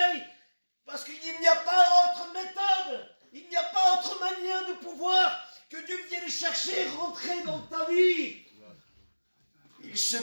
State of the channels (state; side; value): inverted; both; correlation -1.00